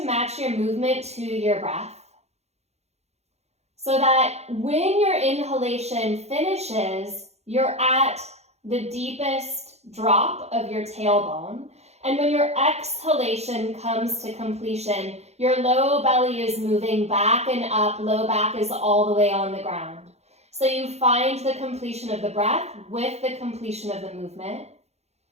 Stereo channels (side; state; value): left; late; 0.31 ms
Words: match your movement to your breath so that when your inhalation finishes, you're at the deepest drop of your tailbone. And when your exhalation comes to completion, your low belly is moving back and up, low back is all the way on the ground. So you find the completion of the breath with the completion of the movement.